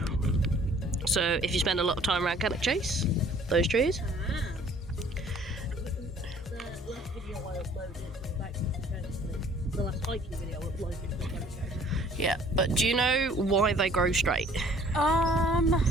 So if you spend a lot of time around Cannock Chase, those trees. The last video I uploaded was back to the last hiking video I uploaded was Cannock Chase. Yeah, but do you know why they grow straight?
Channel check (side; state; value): both; normal; correlation 0.55